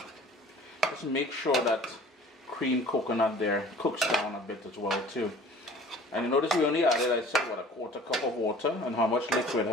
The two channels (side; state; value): both; normal; correlation 0.47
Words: Just make sure that cream coconut there cooks down a bit as well too. And you notice we only added, I said, what, a quarter cup of water, and how much liquid